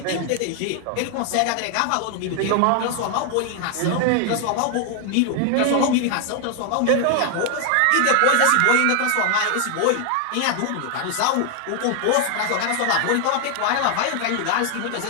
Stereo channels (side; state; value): both; different; correlation 0.00